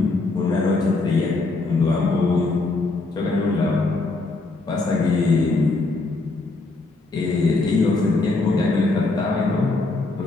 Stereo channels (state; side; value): quieter; right; 3.4 dB